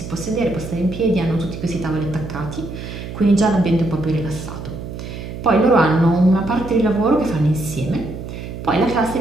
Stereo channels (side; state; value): right; noise; hum, 9 dB below the sound